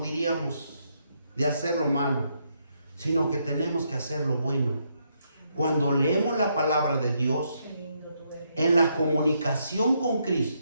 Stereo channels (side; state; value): both; inverted; correlation -0.77